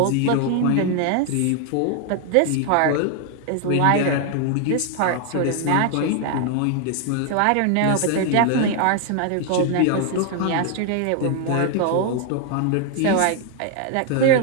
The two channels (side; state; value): both; different; correlation 0.00